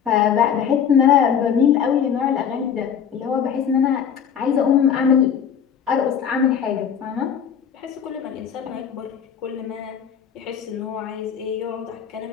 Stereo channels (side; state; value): right; quieter; 7.9 dB